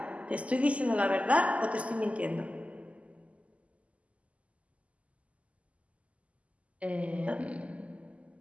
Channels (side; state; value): left; late; 0.066 ms